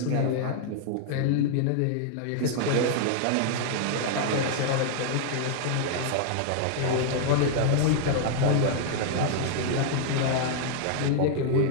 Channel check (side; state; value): both; different; correlation 0.00